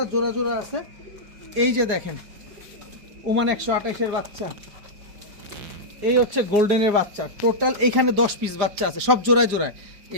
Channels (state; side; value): late; left; 4.8 ms